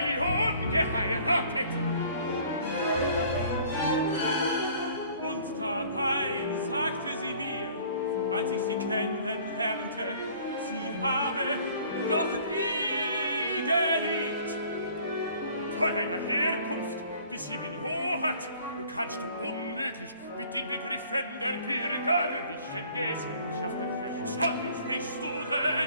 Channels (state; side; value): inverted; both; correlation -0.53